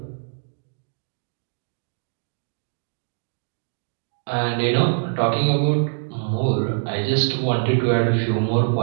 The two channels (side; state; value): left; silent; digital silence